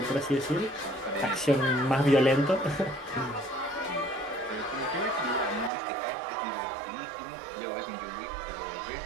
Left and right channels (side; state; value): left; drops out; at 5.7 s